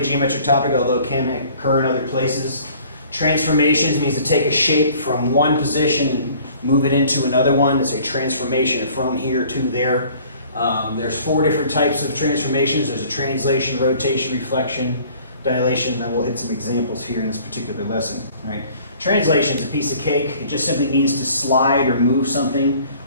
geometric topic, although it can occur in other places. Transformations means to take a shape from one position and move it into another one. It's a transformation from here to there. There's 4 different types of transformations. There's a translation, rotation, reflection, dilation, and we'll hit some examples here in this particular lesson. All right. Translation is a piece of cake. It just simply means to slide or move something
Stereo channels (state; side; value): inverted; both; correlation -0.53